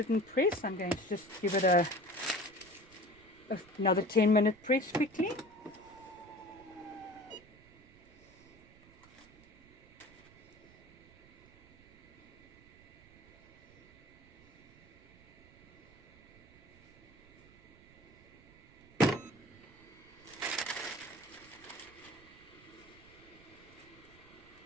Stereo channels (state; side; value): noise; right; rumble, 23 dB below the sound